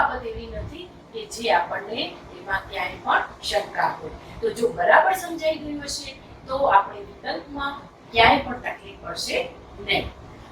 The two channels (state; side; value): identical; both; correlation 1.00